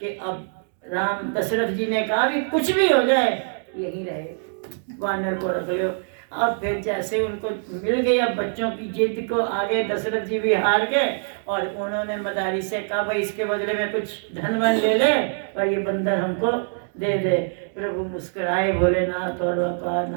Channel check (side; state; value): left; silent; digital silence